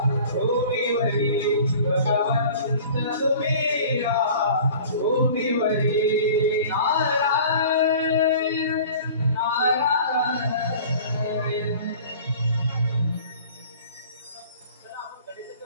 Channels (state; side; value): inverted; both; correlation -0.44